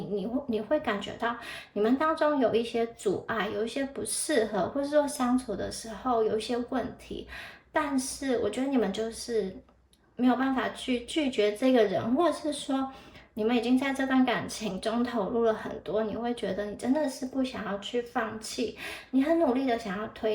会感觉到你们当中有一些阻碍，有一些不适合，或者说相处的时候有一些问题。但是我觉得你们就是没有办法去拒绝这个人，或者是说你们已经在这段感情中投入了很多，你会觉得你真的是不想要去放弃，你很努力的想要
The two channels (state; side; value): identical; both; correlation 1.00